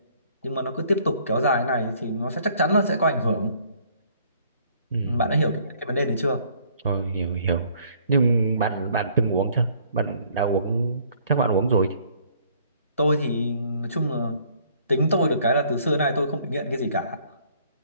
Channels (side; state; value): both; inverted; correlation -0.61